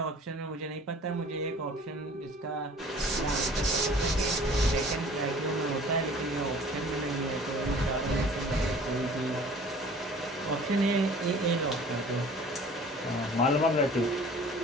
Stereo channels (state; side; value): normal; both; correlation 0.48